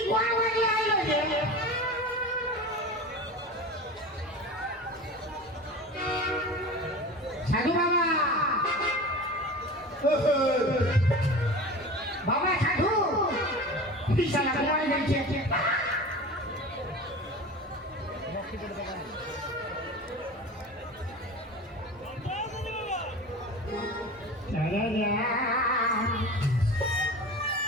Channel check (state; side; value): normal; both; correlation 0.34